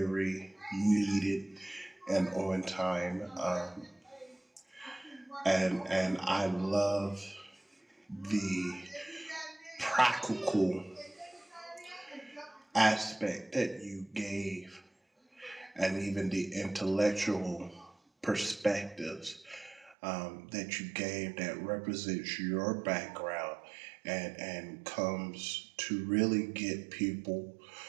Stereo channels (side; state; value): left; drops out; at 20.0 s